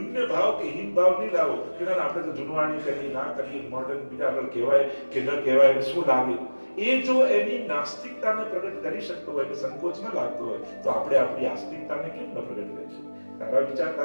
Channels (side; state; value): both; inverted; correlation -1.00